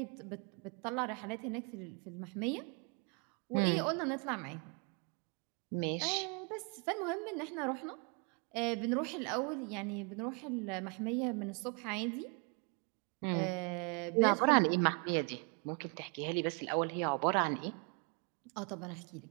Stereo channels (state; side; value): quieter; left; 36.2 dB